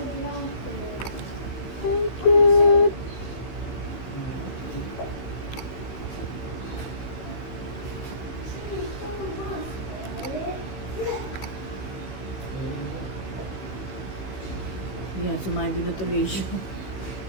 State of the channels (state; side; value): late; right; 15 ms